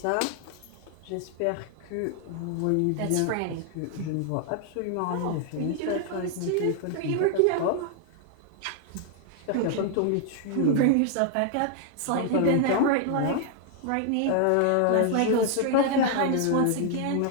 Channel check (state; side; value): different; both; correlation 0.00